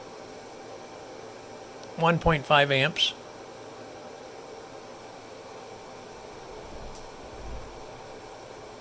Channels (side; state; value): both; identical; correlation 1.00